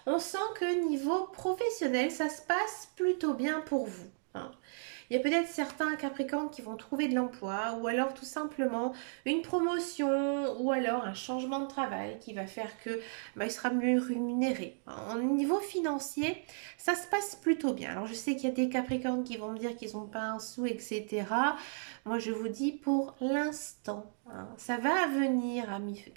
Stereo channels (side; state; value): left; silent; digital silence